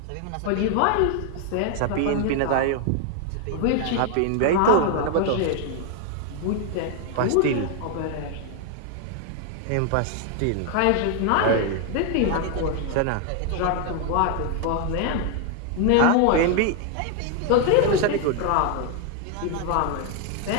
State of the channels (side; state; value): both; different; correlation 0.00